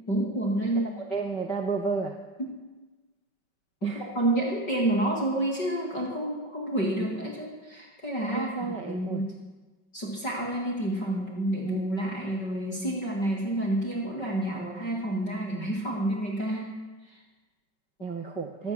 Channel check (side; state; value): right; late; 5.3 ms